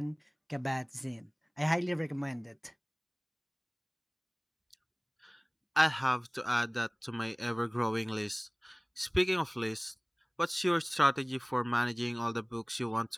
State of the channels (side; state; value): both; identical; correlation 1.00